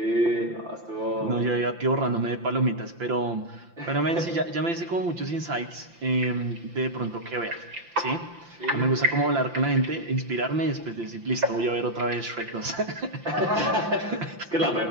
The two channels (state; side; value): late; left; 5.8 ms